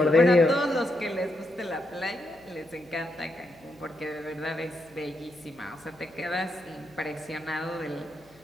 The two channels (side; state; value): left; noise; hum, 28 dB below the sound